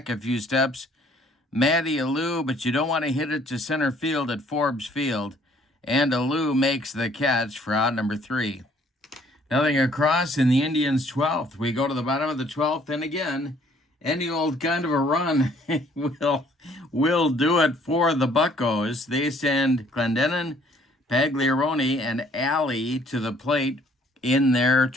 a few steps, Matty Alou, but you don't want to hit it to center field at Forbes Field. And Alou makes the catch for out number 3. Nothing across in the Indians' 12th. We go to the bottom of the 12th, and again, any old kind of a run will do it for the Buccos. They send Clendenin, Pagliarone, and Alley to the plate in their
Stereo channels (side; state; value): both; normal; correlation 0.61